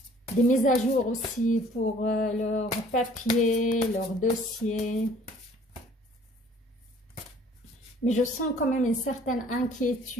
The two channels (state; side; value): normal; both; correlation 0.55